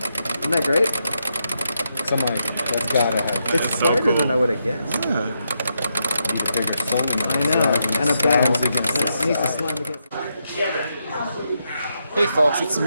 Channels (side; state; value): both; inverted; correlation -0.82